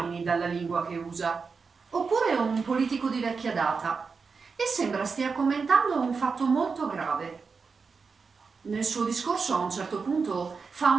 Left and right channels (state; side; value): quieter; left; 5.0 dB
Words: dalla lingua che usa, oppure un politico di vecchia data, e sembra stia commentando un fatto molto grave. Nel suo discorso a un certo punto fa